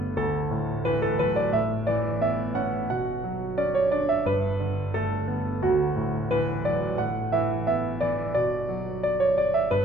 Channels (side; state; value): right; noise; hum, 12 dB below the sound